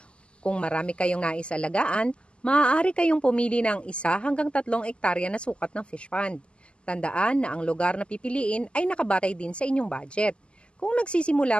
Kung marami kayong nais alagaan, maaari kayong pumili ng 1 hanggang 3 ektarya na sukat ng fish pond. Tandaan na ang lugar na pipiliin ay nakabatay din sa inyong budget. Kung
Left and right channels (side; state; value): right; late; 0.053 ms